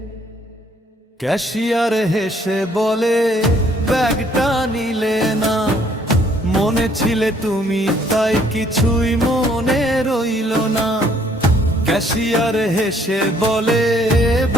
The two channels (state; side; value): normal; both; correlation 0.64